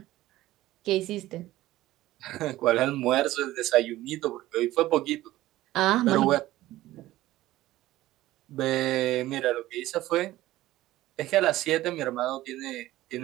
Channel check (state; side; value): quieter; left; 16.0 dB